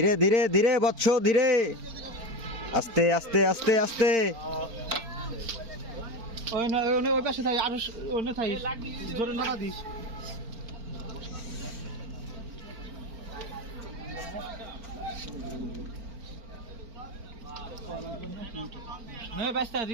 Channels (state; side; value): late; left; 4.4 ms